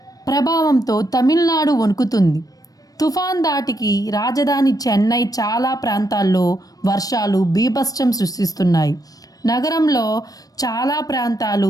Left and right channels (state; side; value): late; right; 0.18 ms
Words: ప్రభావంతో తమిళనాడు వణుకుతుంది. తుఫాన్ దాటికి రాజధాని చెన్నై చాలా ప్రాంతాల్లో వర్షాలు బీభత్సం సృష్టిస్తున్నాయి. నగరంలో చాలా